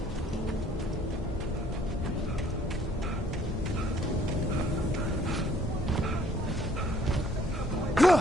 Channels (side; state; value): both; normal; correlation 0.61